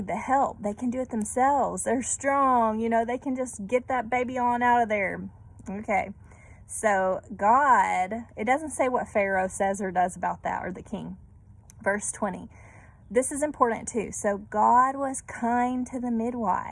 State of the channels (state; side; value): identical; both; correlation 1.00